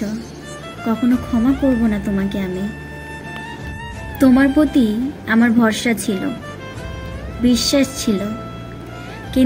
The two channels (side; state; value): both; identical; correlation 1.00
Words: কখনো ক্ষমা করব না তোমাকে আমি। তোমার প্রতি আমার ভরসা ছিল, বিশ্বাস ছিল,